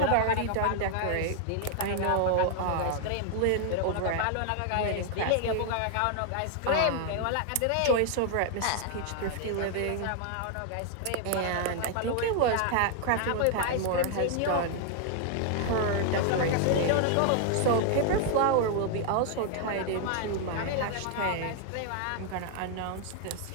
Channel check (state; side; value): different; both; correlation 0.00